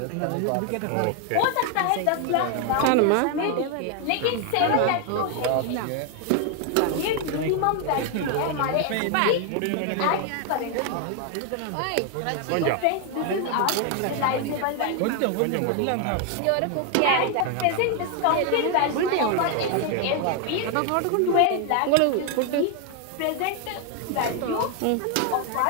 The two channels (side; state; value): both; different; correlation 0.01